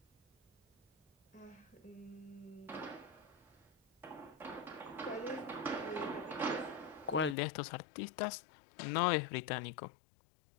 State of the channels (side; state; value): right; drops out; at 7.4 s